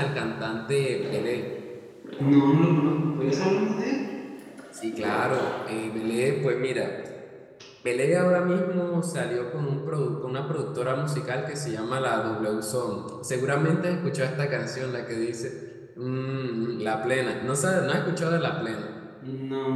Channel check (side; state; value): both; identical; correlation 1.00